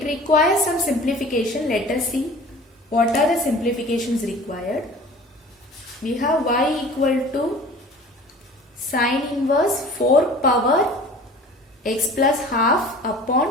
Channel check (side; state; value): both; normal; correlation 0.43